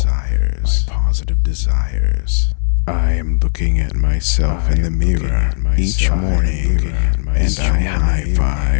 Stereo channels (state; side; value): silent; right; 65 dB below the other